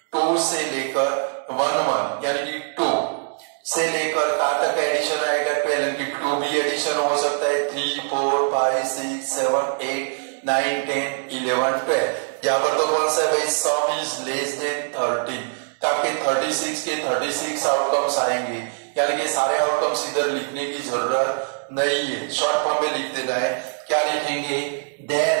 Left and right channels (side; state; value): left; silent; digital silence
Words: 2 से लेकर 1 यानी कि 2 से लेकर कहां तक का एडिशन आएगा 12, यानी कि 2 भी एडिशन हो सकता है 3, 4, 5, 6, 7, 8, 9, 10, 11, 12। यहाँ पर तो कौन सा है भाई सम इज लेस देन 30, तो आपके 36 के 36 आउटकम्स आएंगे, यानी कि सारे आउटकम्स इधर लिखने की जरूरत नहीं है, शॉर्ट फॉर्म में लिख देना है। क्या लिखेंगे,